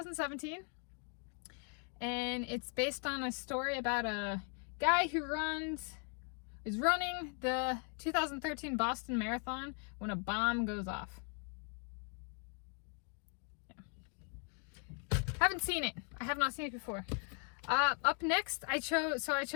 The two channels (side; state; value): right; quieter; 39.6 dB